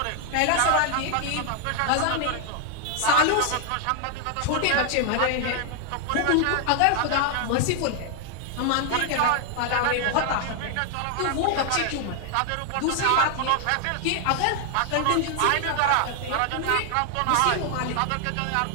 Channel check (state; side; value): different; both; correlation 0.00